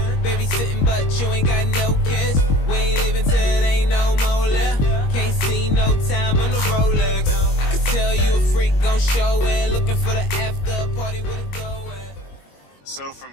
baby sitting but you ain't got no kiss. We ain't leaving till it ain't no more left. Can't see no time on the Rolex. I could tell you a freak gon' show it. Looking for the after party with a go at. So from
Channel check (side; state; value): right; late; 21 ms